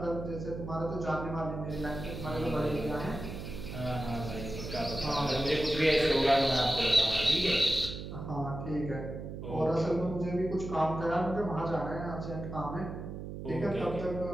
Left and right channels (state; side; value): noise; right; hum, 8 dB below the sound